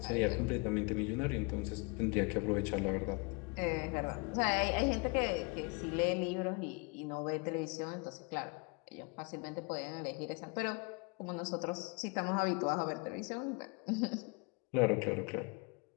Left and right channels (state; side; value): quieter; right; 31.0 dB